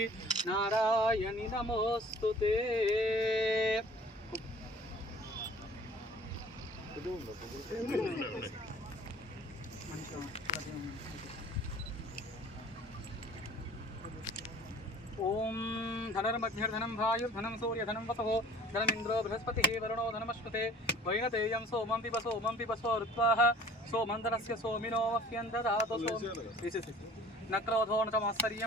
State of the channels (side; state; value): both; normal; correlation 0.49